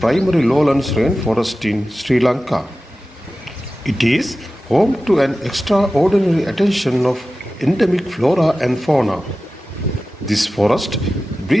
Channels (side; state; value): both; normal; correlation 0.95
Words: lowlands rainforest in Sri Lanka. It is home to an extraordinary attention of endemic flora and fauna. This forest